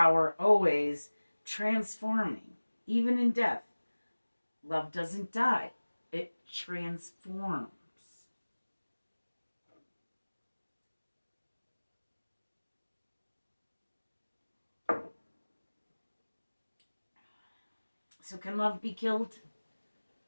always transforming, even in death. Love doesn't die. It transforms. So can love be killed?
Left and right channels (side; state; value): both; inverted; correlation -1.00